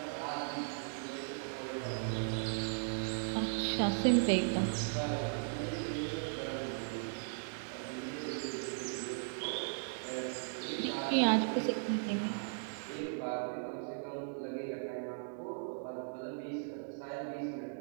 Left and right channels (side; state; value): left; silent; digital silence